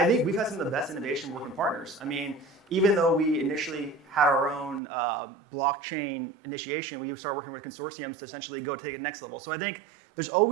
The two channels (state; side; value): drops out; left; at 4.8 s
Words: think we've had some of the best innovation working partners. I mean, even though we initially had our own blockchain initiation, we started working with consortiums to essentially go take it next level. So I think there's